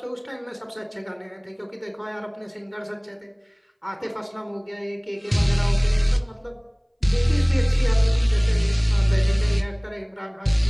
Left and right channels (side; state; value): both; identical; correlation 1.00